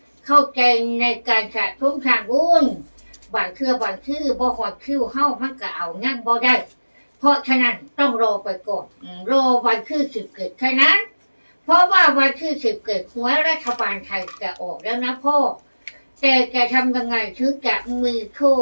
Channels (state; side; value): inverted; both; correlation -1.00